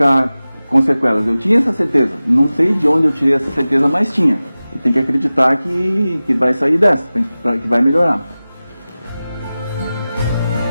com sequelas. Eu tinha essa certeza. Não sei de onde eu tirei essa certeza, mas tinha. E tem que acreditar que vai sair dessa, que vai melhorar.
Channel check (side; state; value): both; inverted; correlation -0.96